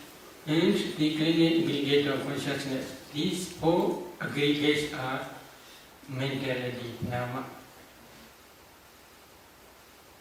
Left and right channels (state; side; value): identical; both; correlation 1.00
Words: and the clinging aggregate of consciousness. These 4 aggregates are mentality, nama.